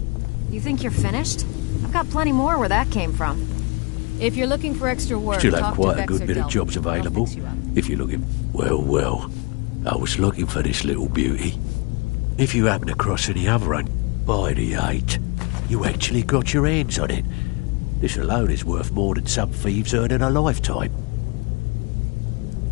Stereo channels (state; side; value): quieter; right; 29.7 dB